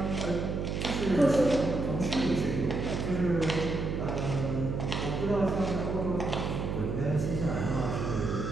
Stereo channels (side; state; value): right; noise; hum, 2 dB below the sound